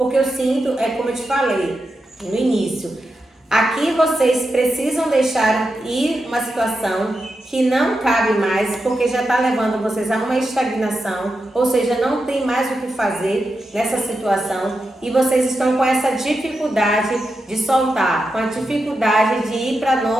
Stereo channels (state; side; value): normal; both; correlation 0.88